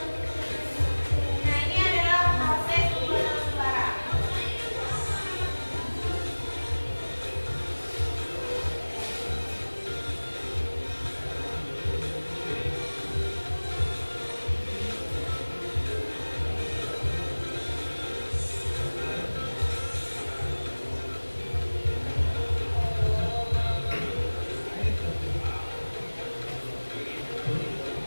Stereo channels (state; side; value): inverted; both; correlation -1.00